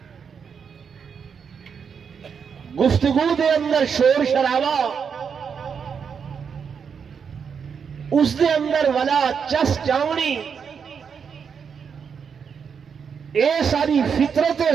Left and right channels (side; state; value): left; quieter; 6.6 dB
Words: گفتگو دے اندر شور شرابہ، اس دے اندر ولا چس چاونی، اے ساری فطرت